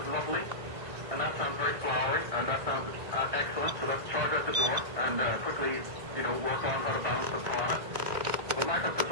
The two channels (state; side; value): late; left; 1.9 ms